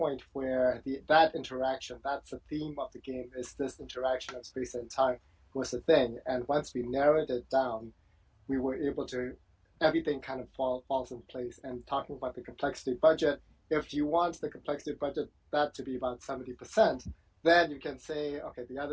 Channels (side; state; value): both; identical; correlation 1.00